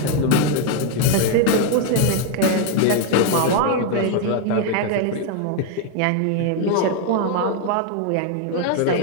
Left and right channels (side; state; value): both; different; correlation 0.00